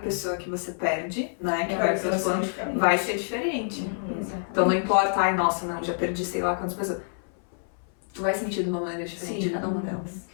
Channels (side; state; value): right; silent; 58 dB below the other